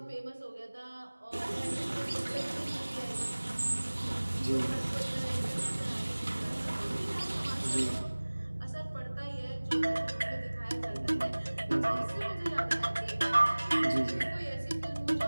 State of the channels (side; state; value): both; inverted; correlation -1.00